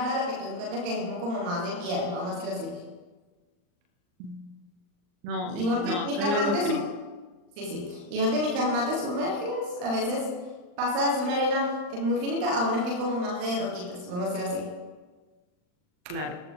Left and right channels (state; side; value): late; left; 39 ms